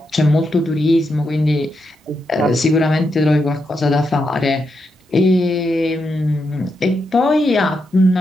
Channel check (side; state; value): both; normal; correlation 0.83